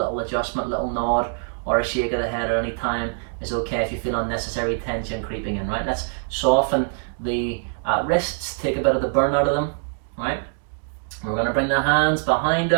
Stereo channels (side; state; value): left; silent; digital silence